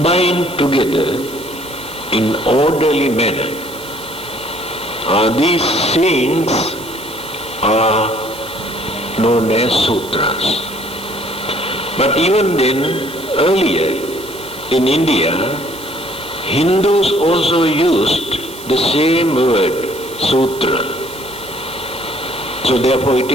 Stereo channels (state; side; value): noise; right; hiss, 16 dB below the sound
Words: together in orderly manner, these sayings are known as sutras. But even then, earlier in India, Hindus also used the same word, sutra. So therefore it